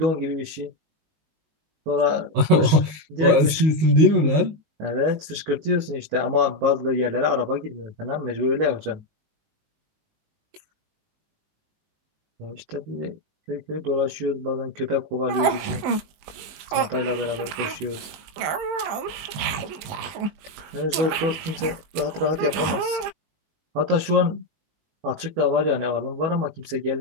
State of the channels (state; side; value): late; left; 19 ms